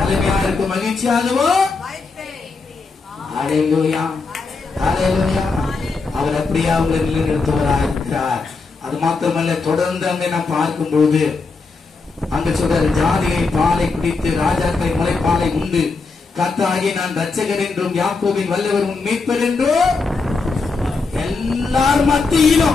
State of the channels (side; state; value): right; quieter; 4.2 dB